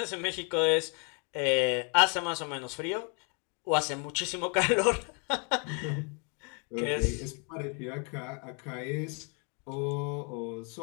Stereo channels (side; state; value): right; quieter; 36.6 dB